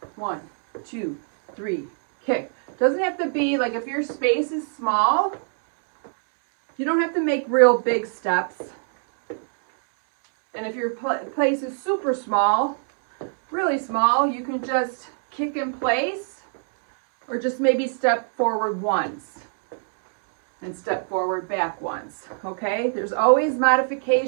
1, 2, 3, kick. Doesn't have to be like, if your space is small, you don't have to make real big steps. And if your place is super small, really small, you can just kick in place or just maybe step forward once and step forward back once, okay? There's always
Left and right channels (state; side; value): silent; left; 61 dB below the other